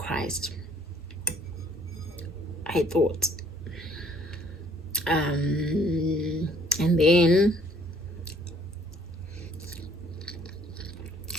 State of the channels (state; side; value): normal; both; correlation 0.61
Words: I thought. And then